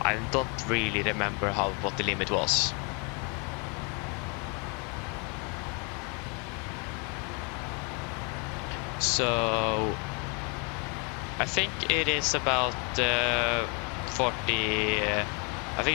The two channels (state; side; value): quieter; right; 33.9 dB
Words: I don't really remember what the limit was. So I think it is about 40. I